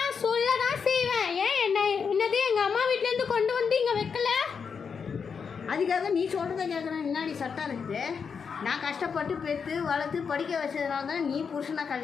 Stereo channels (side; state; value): right; quieter; 6.1 dB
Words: சொல்ல தான் செய்வேன். ஏன் என்னது எங்கள் அம்மா வீட்டிலேருந்து கொண்டு வந்து இங்கே வைக்கல? அதுக்காக நீ சொல்கிறத கேட்கணும் என்னடி சட்டம் இருக்குது? நான் கஷ்டப்பட்டு பெற்று வளர்த்து படிக்க வச்சதுனால தான் நீ புருஷனை